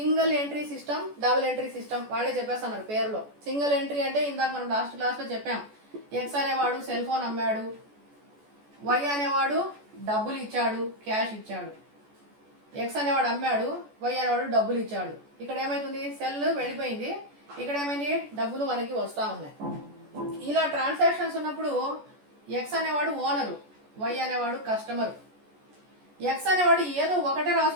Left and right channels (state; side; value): late; left; 14 ms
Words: entry system, double entry system వాళ్ళే చెప్పేస్తున్నారు పేరులో. సింగిల్ ఎంట్రీ అంటే ఇందాక మనం లాస్ట్ క్లాస్లో చెప్పాం, ఎక్స్ అనేవాడు సెల్ ఫోన్ అమ్మాడు, వై అనేవాడు డబ్బులు ఇచ్చాడు, క్యాష్ ఇచ్చాడు. ఎక్స్ అనేవాడు అమ్మాడు, వై అనేవాడు డబ్బులు ఇచ్చాడు. ఇక్కడ ఏమైతుంది, సెల్ వెళ్ళిపోయింది, ఇక్కడ ఏమైంది, డబ్బులు మనకి వస్తూ ఉన్నాయి. ఇలా ట్రాన్సాక్షన్స్ ఉన్నప్పుడు ఎక్స్ అనేవాడు ఓనరు, వై అనేవాడు కస్టమర్. ఎక్స్ అనేవాడు ఏదో ఒకటే